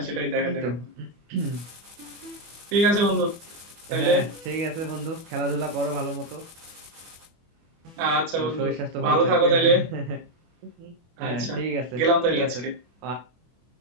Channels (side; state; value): left; late; 24 ms